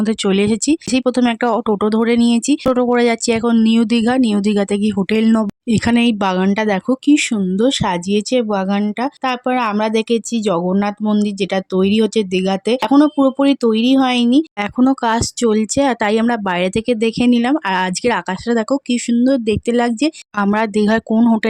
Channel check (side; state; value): both; identical; correlation 1.00